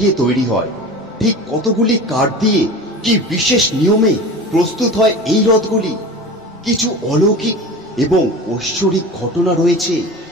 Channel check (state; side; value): normal; both; correlation 0.34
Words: তৈরি হয়, ঠিক কতগুলি কাঠ দিয়ে কি বিশেষ নিয়মে প্রস্তুত হয় এই রথগুলি। কিছু অলৌকিক এবং ঐশ্বরিক ঘটনা রয়েছে